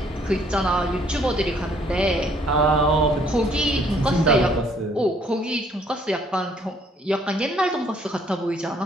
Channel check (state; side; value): normal; both; correlation 0.63